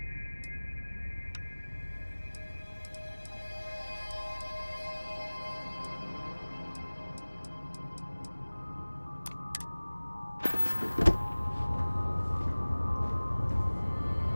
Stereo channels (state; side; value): inverted; both; correlation -1.00